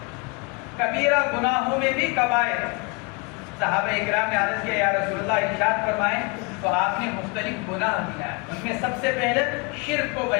کبیرہ گناہوں میں بھی کبائر۔ صحابہ اکرام نے عرض کیا یا رسول اللہ ارشاد فرمائیں، تو آپ نے مختلف گناہ دیا، ان میں سب سے پہلے شرک کو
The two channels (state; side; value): quieter; right; 29.4 dB